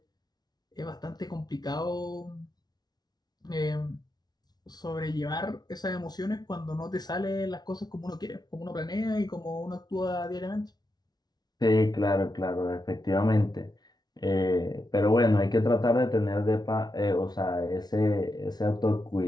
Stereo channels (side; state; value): right; late; 0.19 ms